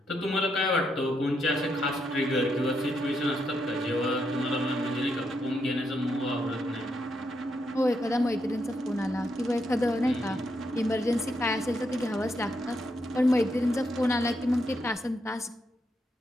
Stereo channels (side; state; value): both; normal; correlation 0.80